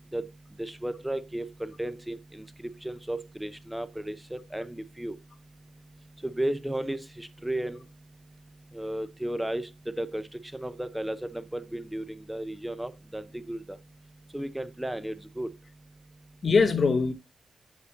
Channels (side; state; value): both; normal; correlation 0.92